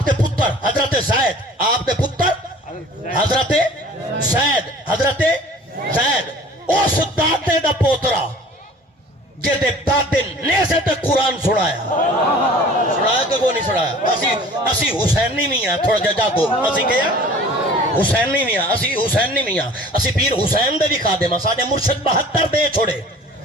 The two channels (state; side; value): normal; both; correlation 0.47